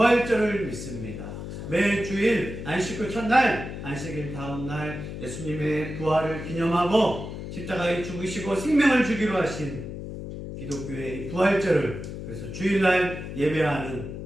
믿습니다. 매주일 안식 후 첫날, 안식일 다음날 예수님의 부활을 기념하고 십자가에 죽으시고 생명을 주기로 하신 기독교의 부활절을, 그래서 주일날 예배하는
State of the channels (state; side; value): noise; left; hum, 8 dB below the sound